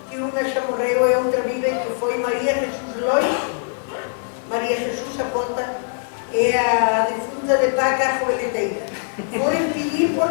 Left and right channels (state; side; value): silent; right; digital silence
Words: que unha xa morreu e outra vive, que foi María Jesús Lois, María Jesús Apota e a defunta de Paca Joeleteira. Foron pedir por